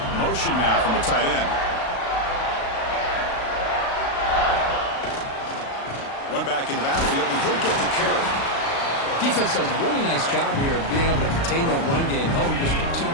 Motion now from the tight end. One back in the backfield, and he'll get the carry. Defense does a really nice job here of being able to contain that run game, held him just to 2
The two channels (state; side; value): late; right; 36 ms